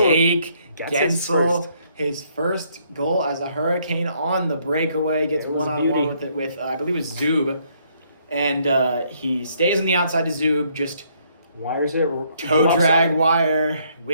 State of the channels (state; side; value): inverted; both; correlation -0.68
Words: gets his first goal as a Hurricane on the breakaway, gets one-on-one with I believe it was Zub. And he stays on the outside to Zub, just wires it. Toe drag wire,